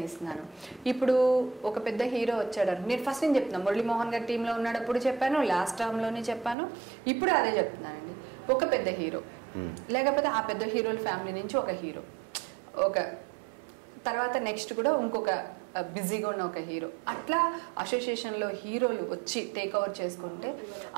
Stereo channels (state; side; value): drops out; left; at 6.6 s